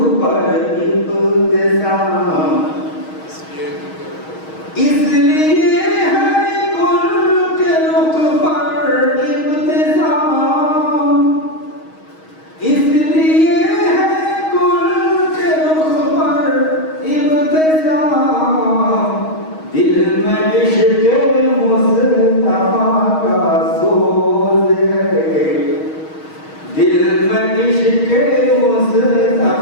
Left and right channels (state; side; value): late; right; 6.3 ms